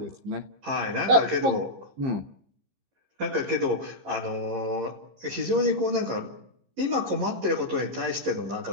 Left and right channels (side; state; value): left; late; 15 ms